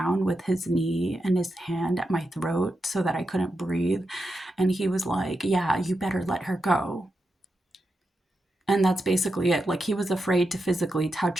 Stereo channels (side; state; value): both; normal; correlation 0.87